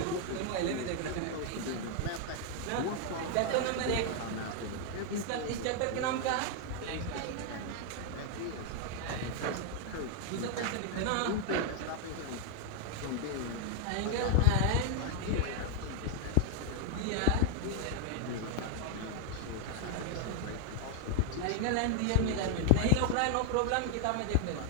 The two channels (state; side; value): different; both; correlation 0.00